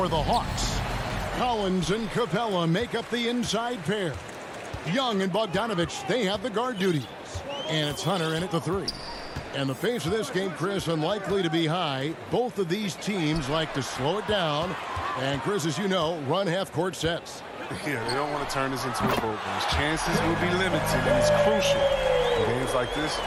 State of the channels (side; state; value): both; identical; correlation 1.00